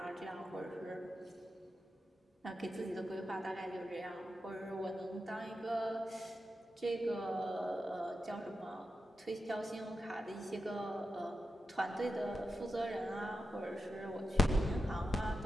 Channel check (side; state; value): both; normal; correlation 0.90